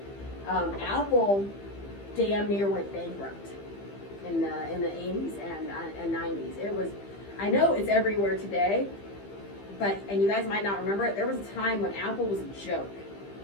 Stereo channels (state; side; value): late; right; 15 ms